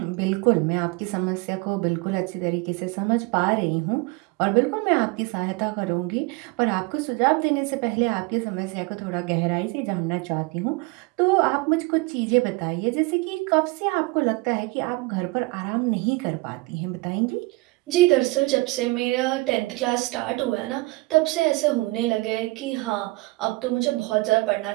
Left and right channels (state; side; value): quieter; left; 23.9 dB